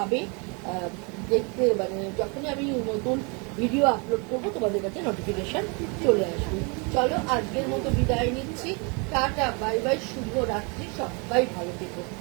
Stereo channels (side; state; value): left; quieter; 32.5 dB